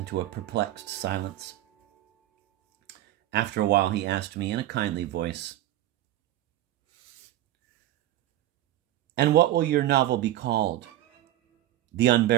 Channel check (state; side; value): quieter; left; 14.0 dB